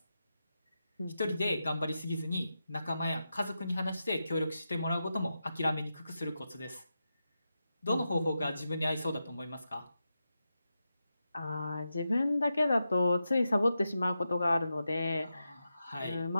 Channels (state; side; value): inverted; both; correlation -0.89